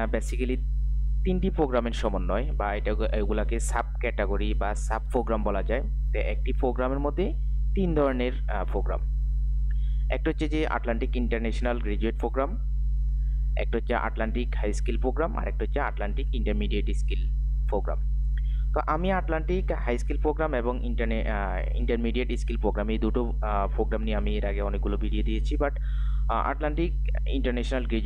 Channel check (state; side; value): identical; both; correlation 1.00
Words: basically তিনটি প্রোগ্রামের সমন্বয়, বা এগুলাকে সাব ক্যাটাগরি বা সাব প্রোগ্রাম বলা যায়। তো একটি প্রোগ্রামের মধ্যে তিন ধরনের প্রোগ্রাম। একটা হচ্ছে যে আটলান্টিক ইন্টারন্যাশনাল গ্রাজুয়েট প্রোগ্রাম, একটা হচ্ছে আটলান্টিক হাই স্কিল প্রোগ্রাম, আর একটা হচ্ছে আটলান্টিক ইন্টারমিডিয়েট স্কিল প্রোগ্রাম। তো আমি আটলান্টিক হাই স্কিল প্রোগ্রাম এবং ইন্টারমিডিয়েট স্কিল প্রোগ্রাম, এই দুটো প্রোগ্রাম নিয়ে আমি এর আগে অনেকগুলো ভিডিও দিয়েছি, but Atlantic international